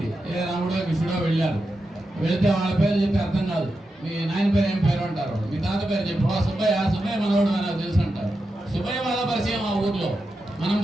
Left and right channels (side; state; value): both; normal; correlation 0.89